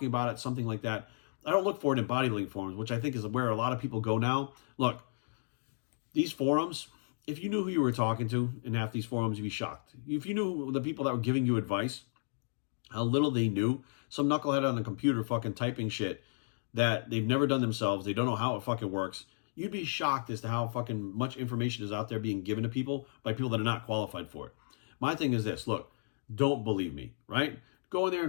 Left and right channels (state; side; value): silent; right; digital silence